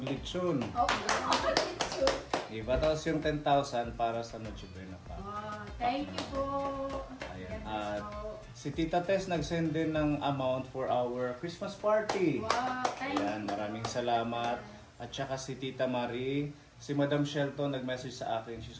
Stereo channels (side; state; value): both; identical; correlation 1.00